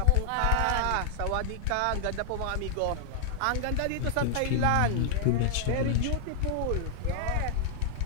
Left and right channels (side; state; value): both; different; correlation -0.01